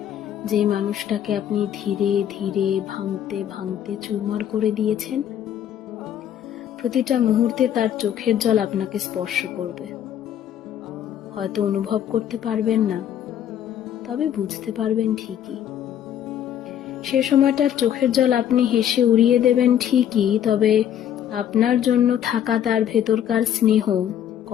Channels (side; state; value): right; quieter; 10.1 dB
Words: যে মানুষটাকে আপনি ধীরে ধীরে ভাঙতে ভাঙতে চুরমার করে দিয়েছেন, প্রতিটা মুহূর্তে তার চোখের জল আপনাকে স্পর্শ করবে। হয়তো অনুভব করতে পারবেন না, তবে বুঝতে পারবেন ঠিকই। সে সময়টার চোখের জল আপনি হেসে উড়িয়ে দেবেন ঠিকই, তবে আপনার জন্য থাকা তার ভেতরকার স্নেহ